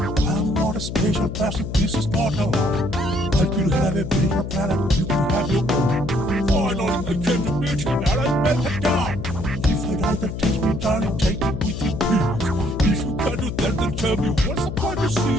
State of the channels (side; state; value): left; noise; hum, 6 dB below the sound